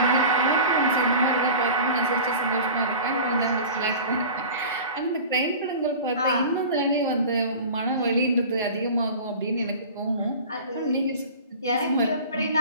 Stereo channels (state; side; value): inverted; both; correlation -0.37